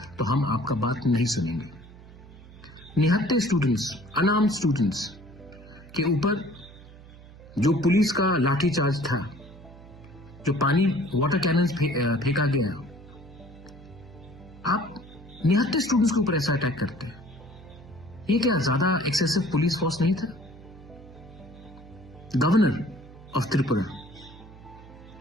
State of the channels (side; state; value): right; noise; hum, 19 dB below the sound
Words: तो हम आपका बात नहीं सुनेंगे। निहत्ते स्टूडेंट्स, अनार्म्ड स्टूडेंट्स के ऊपर जो पुलिस का लाठी चार्ज था, जो पानी वाटर कैनन फेंका गया, आप निहत्ते स्टूडेंट्स के ऊपर ऐसा अटैक करते हैं। ये क्या ज्यादा एक्सेसिव पुलिस फोर्स नहीं था? गवर्नर ऑफ त्रिपुरा